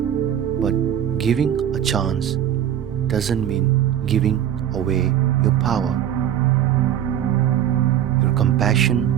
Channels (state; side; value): quieter; left; 10.5 dB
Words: But giving a chance doesn't mean giving away your power. Your